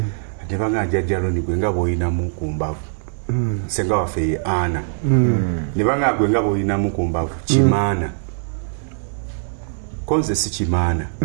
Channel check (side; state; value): left; silent; 65 dB below the other